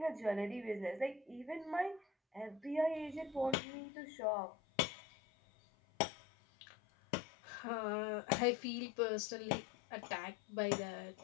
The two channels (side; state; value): right; drops out; at 3.6 s